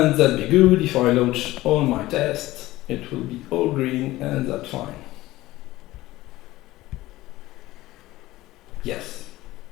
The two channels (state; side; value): quieter; right; 17.3 dB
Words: be good. If I launch all my tests, it will be all green, and that's fine. Yes.